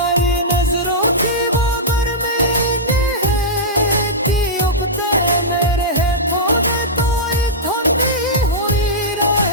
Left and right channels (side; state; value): both; normal; correlation -0.12